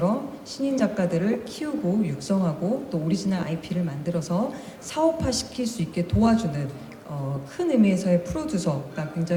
신인 작가들을 키우고 육성하고 또 오리지널 IP를 만들어서 사업화시킬 수 있게 도와주는 큰 의미에서의 프로듀서가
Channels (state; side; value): identical; both; correlation 1.00